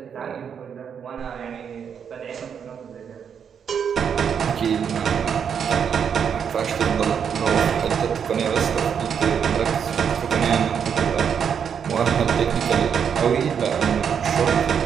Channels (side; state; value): left; quieter; 7.5 dB